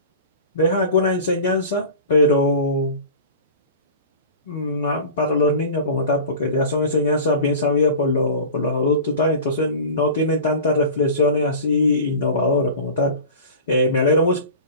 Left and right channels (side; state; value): both; inverted; correlation -0.36